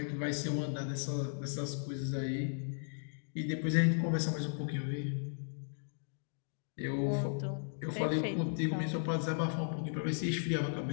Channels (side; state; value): right; silent; digital silence